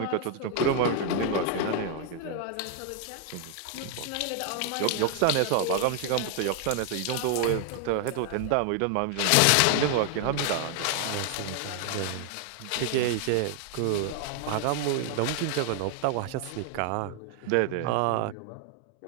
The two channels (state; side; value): different; both; correlation 0.00